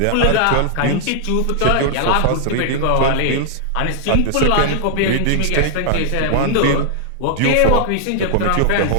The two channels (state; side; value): different; both; correlation 0.00